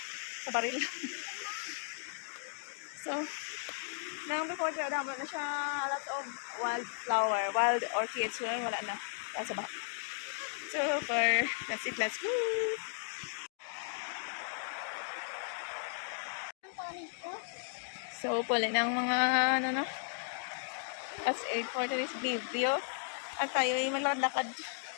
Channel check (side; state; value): right; silent; digital silence